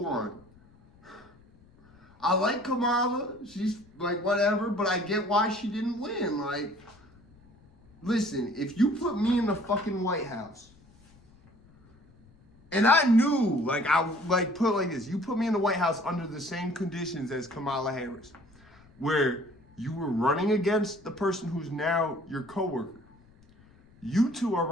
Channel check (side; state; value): left; noise; rumble, 28 dB below the sound